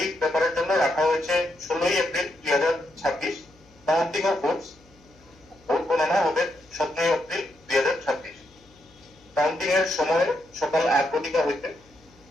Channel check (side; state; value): left; noise; hum, 29 dB below the sound